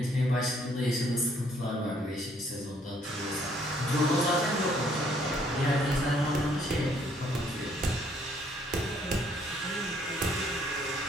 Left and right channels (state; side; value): normal; both; correlation 0.65